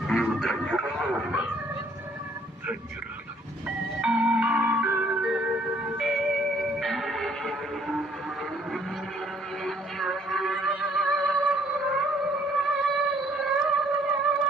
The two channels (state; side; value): normal; both; correlation 0.63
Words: నీవు ధన్యురాలు ఉన్నా, ధన్యురాలు.